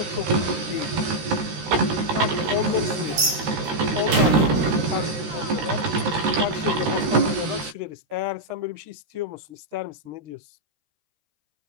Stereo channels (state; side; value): late; left; 13 ms